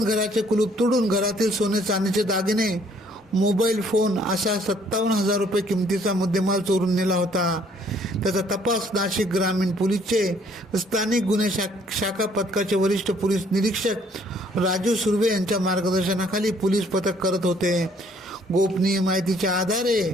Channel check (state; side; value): normal; both; correlation 0.62